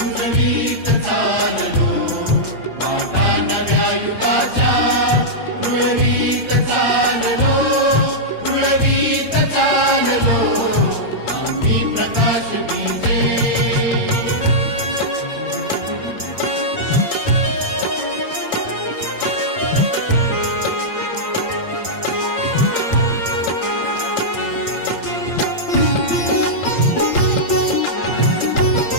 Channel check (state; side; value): late; right; 8.7 ms